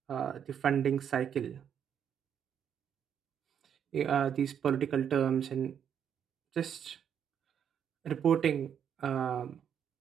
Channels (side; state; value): left; quieter; 8.4 dB